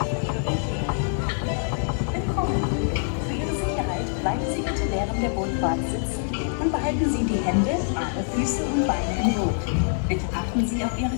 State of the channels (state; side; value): silent; right; digital silence